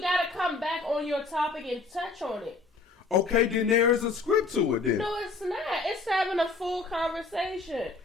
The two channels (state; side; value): quieter; right; 3.9 dB